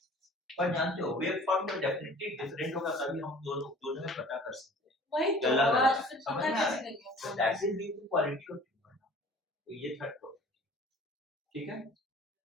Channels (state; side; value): normal; both; correlation 0.47